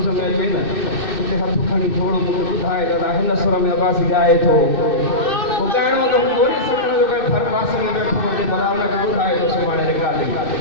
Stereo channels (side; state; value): right; late; 2.6 ms